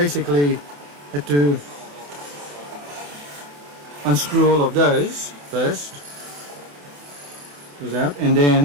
had to unscrew all of those first. Goes out, and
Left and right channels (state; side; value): late; left; 28 ms